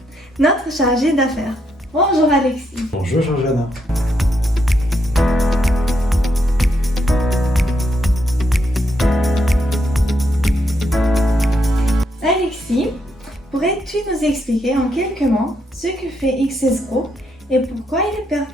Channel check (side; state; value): both; normal; correlation 0.78